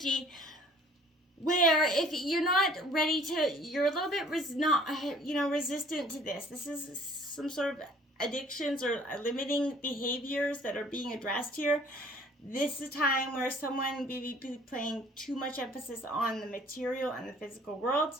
where if you're not ready to, you're a little bit resistant to this. This is some sort of addictions or limiting behaviors that are being addressed here. This is a time where someone may be playing too much emphasis on the material and the physical world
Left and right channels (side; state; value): both; normal; correlation 0.54